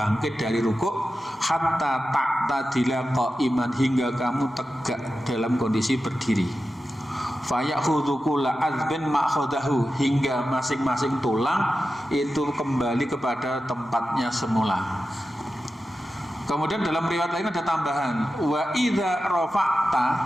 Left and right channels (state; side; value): normal; both; correlation 0.92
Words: dari rukuk, hatta ta'tadila qa'iman, hingga kamu tegak dalam kondisi berdiri. Fayakhudhu kulla azbin ma'khadahu, hingga masing-masing tulang itu kembali kepada tempatnya semula. Kemudian dalam riwayat lain ada tambahan, wa idza rafa'ta,